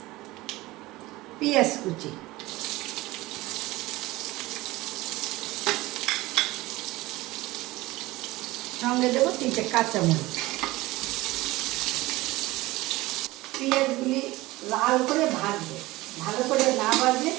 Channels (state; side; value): quieter; left; 19.4 dB